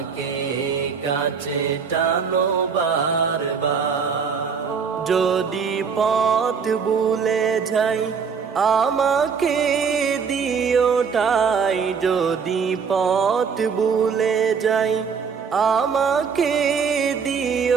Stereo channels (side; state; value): left; quieter; 6.1 dB